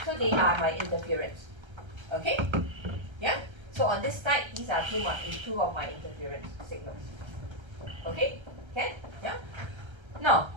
So they are my interference. Okay? Yeah? So on this side, these are two of my interference signals. Okay? Can? Yeah? Now,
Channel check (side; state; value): left; late; 1.3 ms